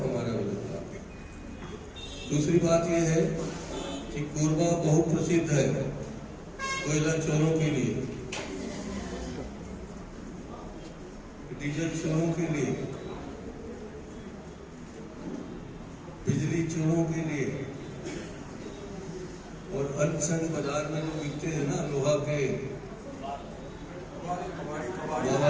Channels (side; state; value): both; identical; correlation 1.00